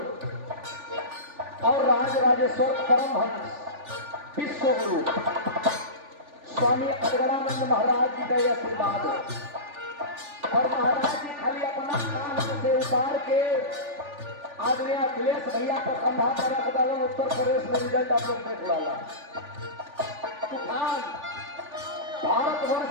और राज राजेश्वर परमहंस विश्व गुरु स्वामी अड़गड़ानंद महाराज जी का यह आशीर्वाद है। और महाराज जी खाली अपना काम से उतार के आदरणीय अखिलेश भैया का कंधा पर रख डालो। उत्तर प्रदेश में रिजल्ट आप लोग देख डाला। तूफान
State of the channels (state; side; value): late; left; 3.4 ms